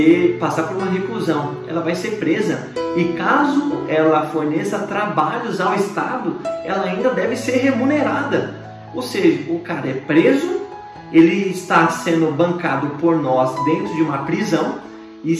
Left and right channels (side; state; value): both; identical; correlation 1.00